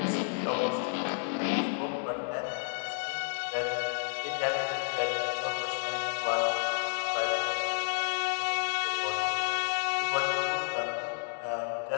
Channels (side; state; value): right; silent; 57 dB below the other